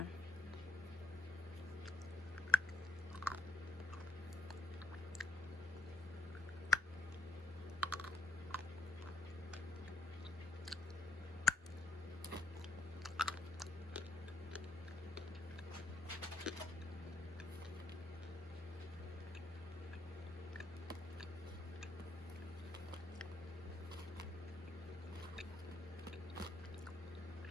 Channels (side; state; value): both; normal; correlation 0.74